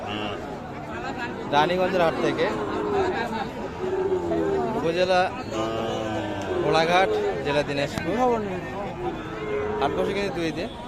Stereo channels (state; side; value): identical; both; correlation 1.00